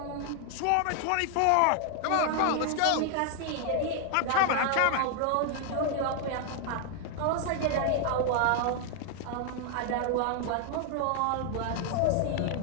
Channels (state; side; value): different; both; correlation 0.00